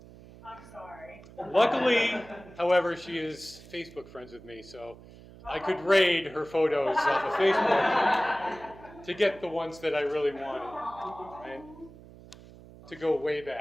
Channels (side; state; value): right; noise; hum, 20 dB below the sound